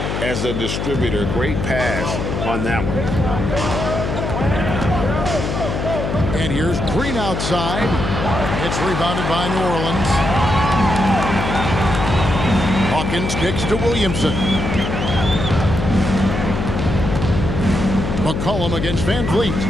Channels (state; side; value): noise; left; hum, 2 dB below the sound